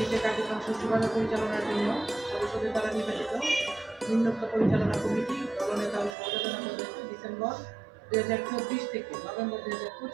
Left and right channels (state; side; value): drops out; left; at 6.2 s